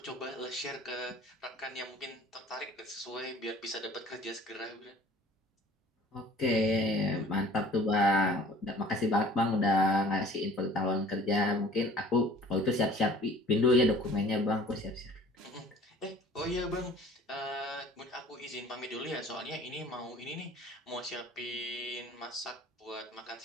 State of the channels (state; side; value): normal; both; correlation 0.49